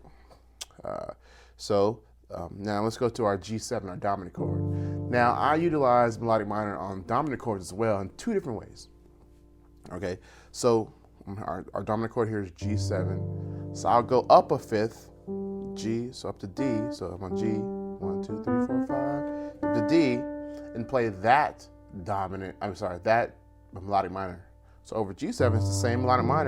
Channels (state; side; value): identical; both; correlation 1.00